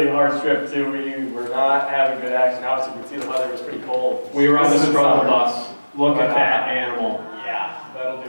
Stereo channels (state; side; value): inverted; both; correlation -1.00